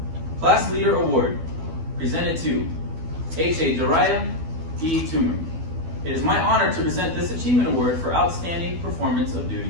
Class Leader Award, presented to H.A. Dariah E. Toomer. It is my honor to present this achievement award for outstanding performance of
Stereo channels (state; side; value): late; left; 12 ms